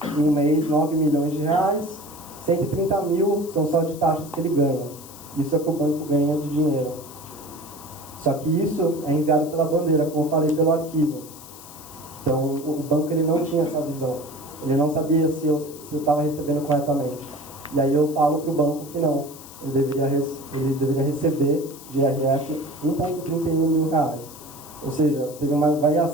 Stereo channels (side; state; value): left; noise; hiss, 17 dB below the sound